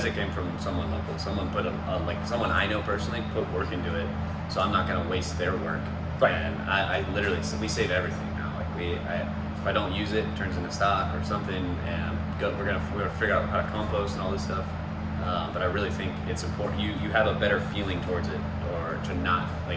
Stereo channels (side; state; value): both; identical; correlation 1.00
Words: it came from someone local. Someone put like someone I know personally put work into it, so I'm not gonna waste their work. Right. And I literally, we save everything now. Like if I don't use it, it turns into stock or something, and we're gonna figure out how to compost and all this stuff. But I really think it's important. You have a better feeling towards it, or to not